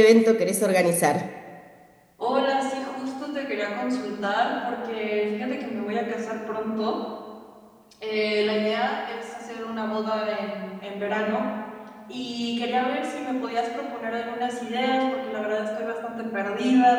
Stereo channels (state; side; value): identical; both; correlation 1.00